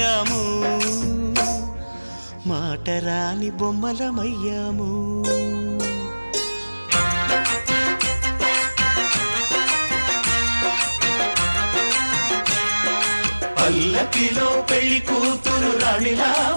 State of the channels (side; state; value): both; inverted; correlation -1.00